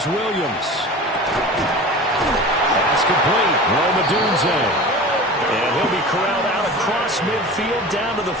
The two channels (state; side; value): normal; both; correlation 0.35